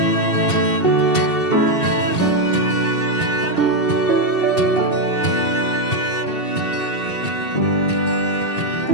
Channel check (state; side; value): late; right; 2.7 ms